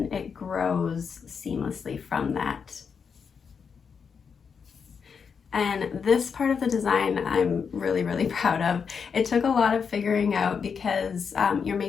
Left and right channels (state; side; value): quieter; right; 6.2 dB